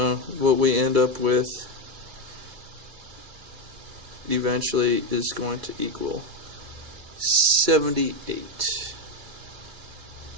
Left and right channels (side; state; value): left; late; 2.6 ms